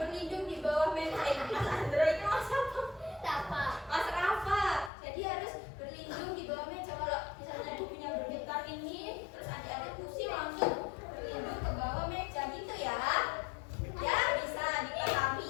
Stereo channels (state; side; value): drops out; right; at 4.9 s